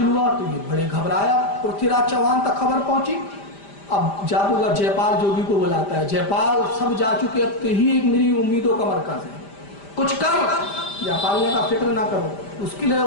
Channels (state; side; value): late; right; 5.0 ms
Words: ہوا تو یہ بڑے گھبرایا۔ پرتھی راج چوہان تک خبر پہنچی۔ اب جادوگر جے پال جوگی کو بلاتا ہے، جے پال سب جا چکے، اب ہی ایک میری امیدوں کا مرکز ہے، کچھ کر۔ جے پال نے کہا فکر نہ کرو، اس کے لیے،